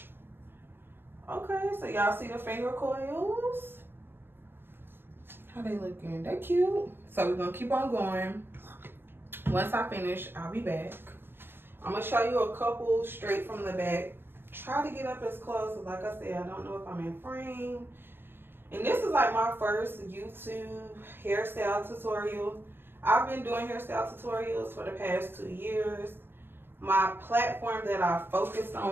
Okay, so y'all see the finger coils? How they looking? They cute. So we're gonna keep on going. Once I finish, I'll be back. I'm gonna show you a couple straight from the back. Try to get up as close, like I said, I don't know if I'm in frame. And this is like my first YouTube hairstyle tutorial. I've been doing hairstyle tutorials for the past 2 years. My platform that I focused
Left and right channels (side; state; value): left; late; 0.10 ms